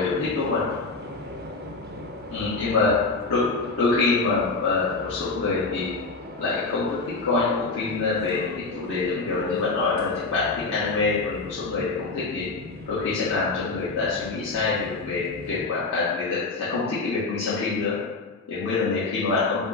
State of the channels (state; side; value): quieter; right; 3.7 dB